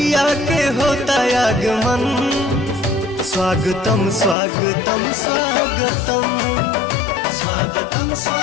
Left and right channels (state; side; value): drops out; right; at 4.4 s